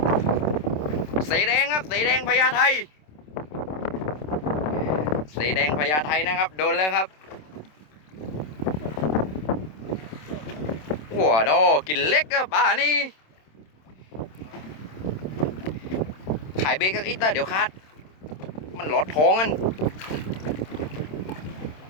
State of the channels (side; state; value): right; late; 27 ms